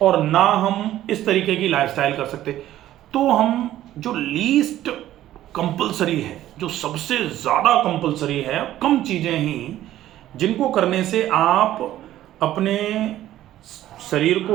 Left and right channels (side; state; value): left; quieter; 13.4 dB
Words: और ना हम इस तरीके की लाइफस्टाइल कर सकते। तो हम जो लीस्ट कंपलसरी है, जो सबसे ज़्यादा कंपलसरी है, कम चीज़ें ही जिनको करने से आप अपने शरीर